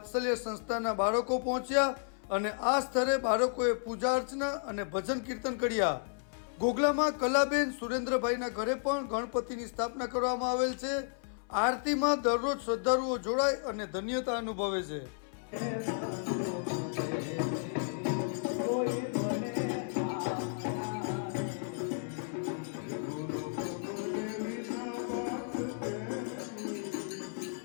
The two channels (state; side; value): silent; right; 56 dB below the other